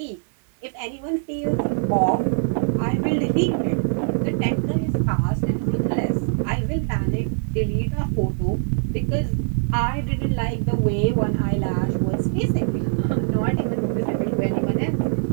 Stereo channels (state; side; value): silent; left; 62 dB below the other